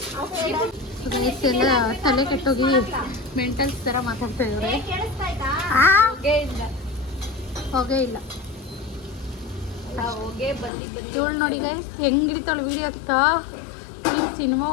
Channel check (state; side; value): drops out; right; at 10.7 s